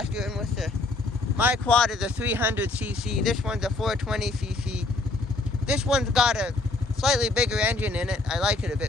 And with my quad is a 300cc, this one's a 420cc. This one's got a slightly bigger engine in it. I like it a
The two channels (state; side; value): quieter; right; 3.3 dB